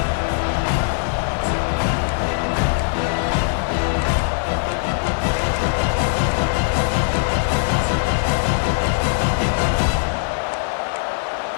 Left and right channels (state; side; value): silent; right; digital silence